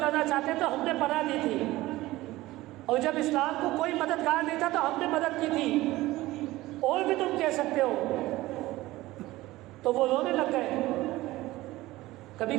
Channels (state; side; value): quieter; left; 17.9 dB